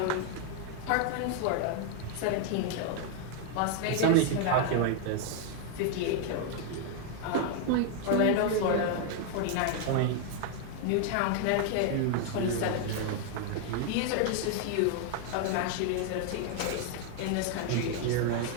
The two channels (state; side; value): different; both; correlation 0.00